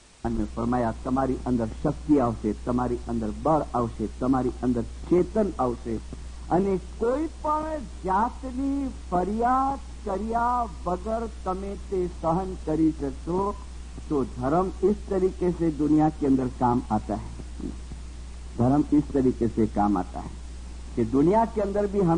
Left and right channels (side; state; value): both; identical; correlation 1.00